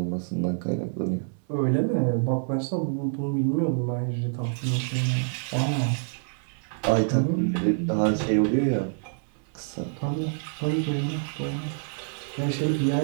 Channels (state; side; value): silent; left; 60 dB below the other